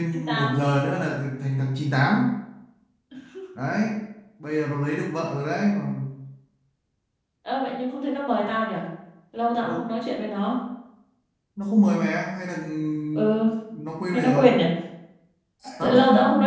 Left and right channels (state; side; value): identical; both; correlation 1.00